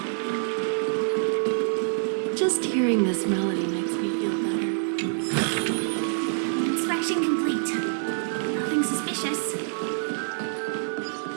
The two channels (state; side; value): silent; left; digital silence